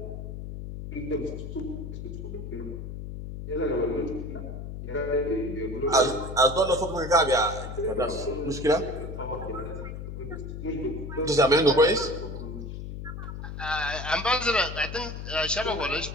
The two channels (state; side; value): noise; left; hum, 8 dB below the sound